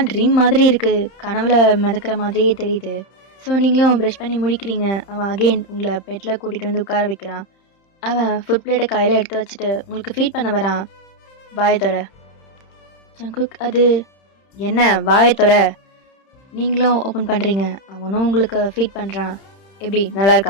ட்ரீம் மாதிரி இருக்குது, கனவுல மிதக்கிற மாதிரியே தெரியுது. ஸோ நீங்களும் ப்ரெஷ் பண்ணி முடிக்கிறீங்க. அவன் அகெயின் உங்களை பெட்டில் கூட்டிகிட்டு வந்து உட்கார வைக்கிறான். அவன் ஃபுட் பிளேட்டை கையில் எடுத்து வச்சுட்டு உங்களுக்கு ஃபீட் பண்ண வரான். வாயை தொற. ஜங்குக், அது என்ன? வாயை தொற. நீங்களும் ஓப்பன் பண்ணுறீங்க. அவனும் உங்களுக்கு ஃபீட் பண்ணுறான். எப்படி, நல்லா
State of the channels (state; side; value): late; right; 30 ms